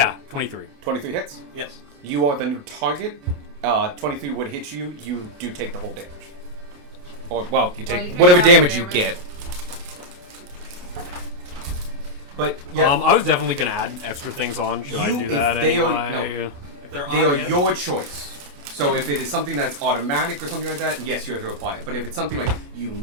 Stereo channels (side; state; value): left; late; 28 ms